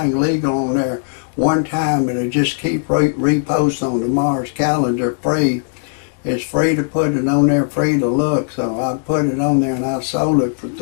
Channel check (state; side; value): silent; right; digital silence